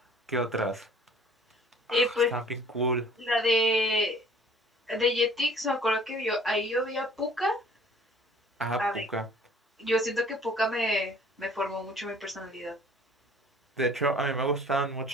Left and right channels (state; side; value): normal; both; correlation 0.53